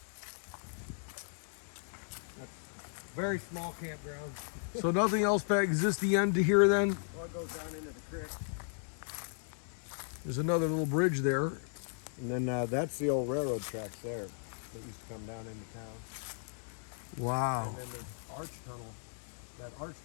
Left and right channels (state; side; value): silent; right; 54 dB below the other